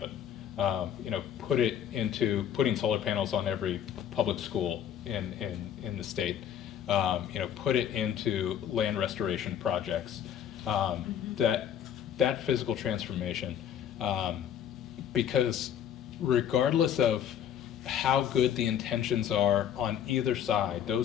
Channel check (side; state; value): right; quieter; 9.6 dB